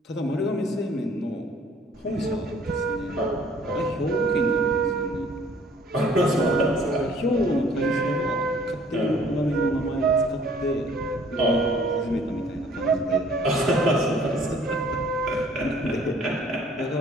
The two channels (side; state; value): both; normal; correlation 0.56